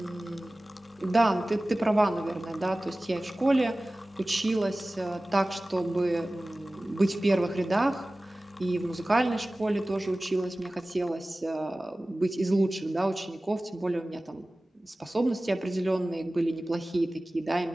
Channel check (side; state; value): both; normal; correlation 0.97